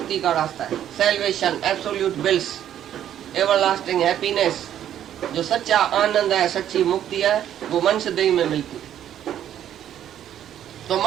का रास्ता है। Salvation, absolute bills, everlasting happiness, जो सच्चा आनंद है, सच्ची मुक्ति है, वो मनुष्य देह में मिलती है। तो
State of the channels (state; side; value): quieter; left; 10.7 dB